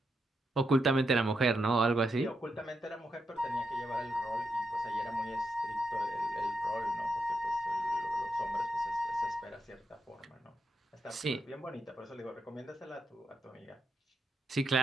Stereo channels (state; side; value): normal; both; correlation 0.83